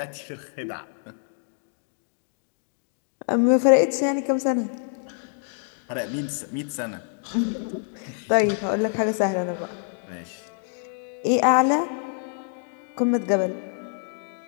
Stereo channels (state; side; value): silent; right; 61 dB below the other